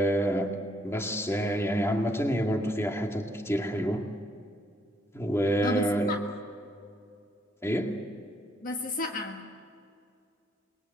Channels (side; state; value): both; normal; correlation 0.71